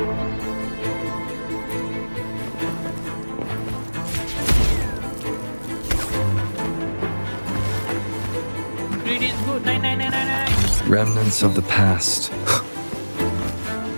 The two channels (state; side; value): inverted; both; correlation -1.00